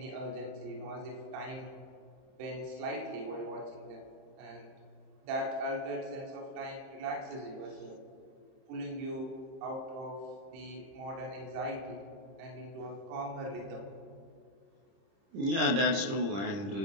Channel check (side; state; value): left; late; 30 ms